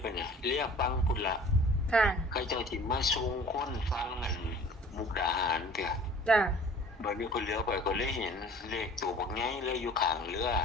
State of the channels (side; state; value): both; normal; correlation 0.48